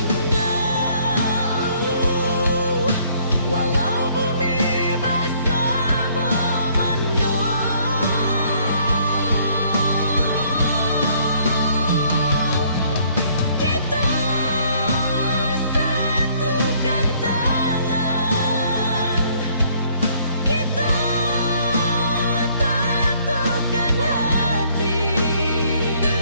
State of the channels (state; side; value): inverted; both; correlation -0.63